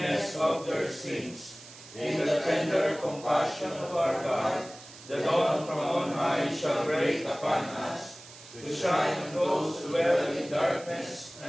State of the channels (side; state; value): right; noise; hiss, 18 dB below the sound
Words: of their sins. In the tender compassion of our God, the dawn from on high shall break upon us, to shine on those who dwell in darkness